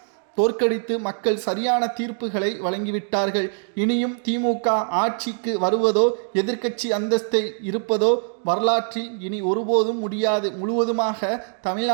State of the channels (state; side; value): silent; left; 63 dB below the other